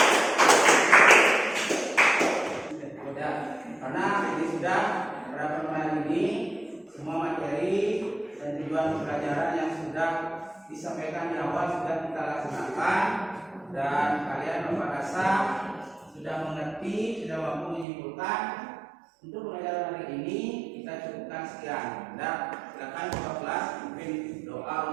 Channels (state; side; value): drops out; left; at 17.9 s